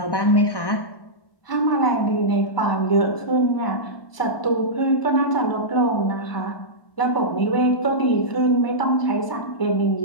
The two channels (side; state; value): right; late; 1.0 ms